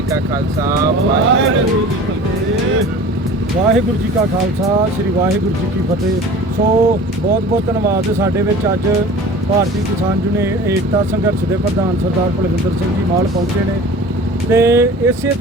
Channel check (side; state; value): both; normal; correlation 0.41